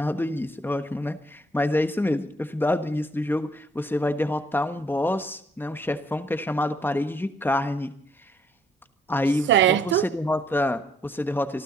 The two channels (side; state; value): both; normal; correlation 0.67